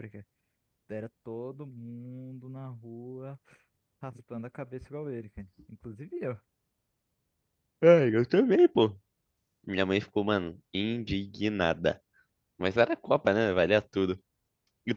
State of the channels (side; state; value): both; identical; correlation 1.00